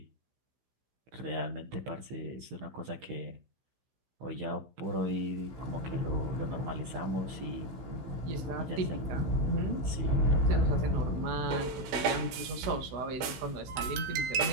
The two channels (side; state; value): left; late; 16 ms